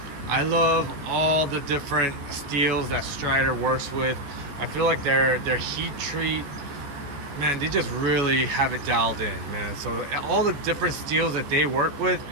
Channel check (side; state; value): left; late; 14 ms